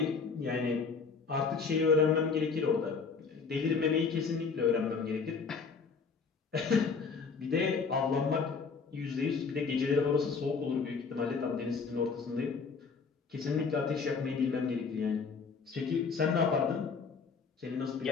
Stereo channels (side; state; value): right; quieter; 5.2 dB